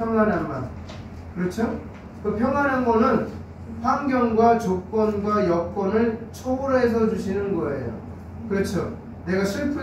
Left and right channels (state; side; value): identical; both; correlation 1.00